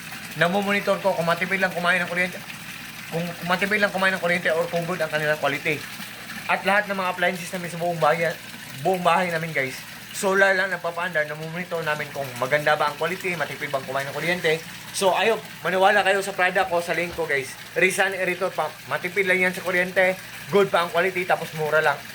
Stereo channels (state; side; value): identical; both; correlation 1.00